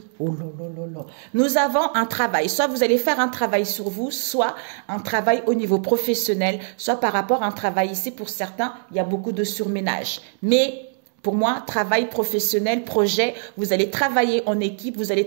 Oh là là là là. Nous avons un travail. Soit vous allez faire un travail sur vous, soit un travail au niveau professionnel, soit par rapport à un travail ici. Pour certains, il y a beaucoup de surménage. Mais pour moi, travail professionnel, projet, vous allez travailler en équipe, vous allez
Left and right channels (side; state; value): left; silent; digital silence